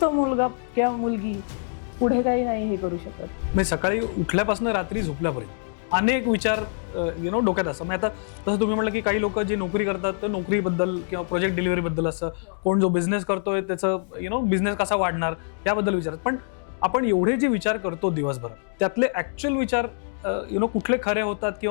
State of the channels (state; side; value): silent; right; digital silence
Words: तो मुलगा किंवा मुलगी पुढे काही नाही हे करू शकत. म्हणजे सकाळी उठल्यापासून रात्री झोपल्यापर्यंत अनेक विचार डोक्यात असतात. म्हणजे आता तसं तुम्ही म्हटलं की काही लोक जे नोकरी करतात तर नोकरीबद्दल किंवा प्रोजेक्ट डिलिव्हरीबदल असं, कोण जो बिझनेस करतोय त्याचं बिझनेस कसा वाढणार याबद्दल विचारतात. पण आपण एवढे जे विचार करतो दिवसभर, त्यातले ऍक्च्युअल विचार कुठले खरे होतात